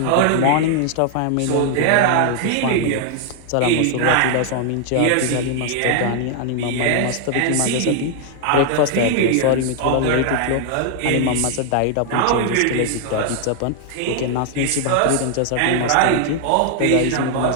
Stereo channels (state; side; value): different; both; correlation 0.00